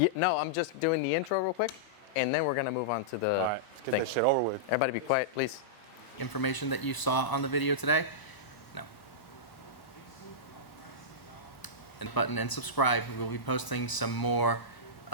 no, I'm just doing the intro real quick, and then we're going to move on to the All right, let's get that shit over with. Everybody be quiet, please. Information that you saw on the video today? No. And button and subscribe. We will be posting some more.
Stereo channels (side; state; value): right; late; 1.0 ms